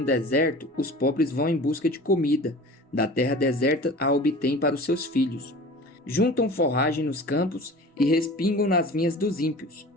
deserto, os pobres vão em busca de comida. Da terra deserta a obtêm para os seus filhos. Juntam forragem nos campos e respingam nas vinhas dos ímpios.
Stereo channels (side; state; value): both; normal; correlation 0.40